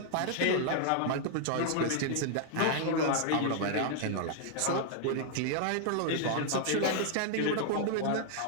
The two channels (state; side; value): different; both; correlation 0.00